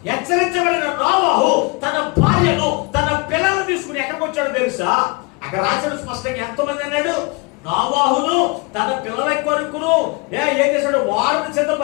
హెచ్చరించబడిన నోవహు తన భార్యను తన పిల్లలను తీసుకుని ఎక్కడికి వచ్చాడు తెలుసా? అక్కడ రాశాడు స్పష్టంగా. ఎంతమంది అన్నాడు? నోవహును తన పిల్లల కొడుకును ఏం చేశాడు? వారిని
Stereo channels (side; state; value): right; quieter; 29.2 dB